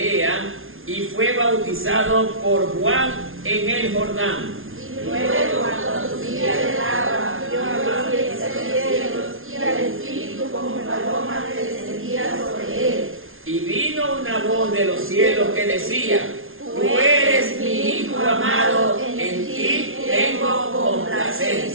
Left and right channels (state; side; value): late; left; 0.60 ms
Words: y fue bautizado por Juan en el Jordán. Luego, cuando subía del agua, vio abrirse los cielos y al Espíritu como paloma que descendía sobre él. Y vino una voz de los cielos que decía: tú eres mi Hijo amado, en ti tengo